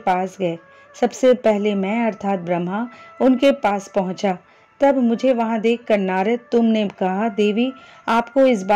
गए। सबसे पहले मैं अर्थात ब्रह्मा उनके पास पहुंचा। तब मुझे वहां देखकर नारद, तुमने कहा, देवी आपको इस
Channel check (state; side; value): identical; both; correlation 1.00